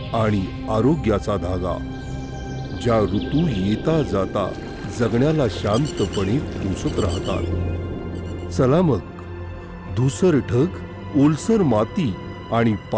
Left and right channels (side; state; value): both; identical; correlation 1.00